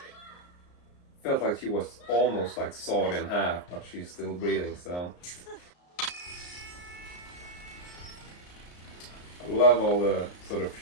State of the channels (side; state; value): right; late; 34 ms